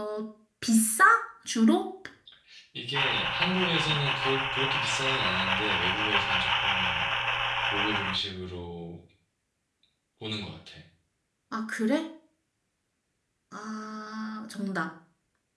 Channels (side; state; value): both; identical; correlation 1.00